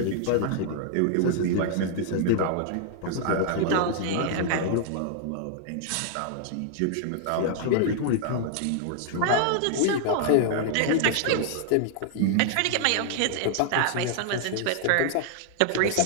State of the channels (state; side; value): different; both; correlation -0.01